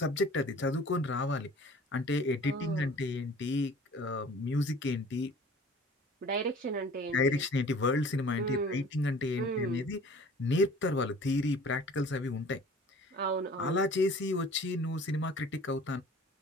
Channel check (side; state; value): both; normal; correlation 0.47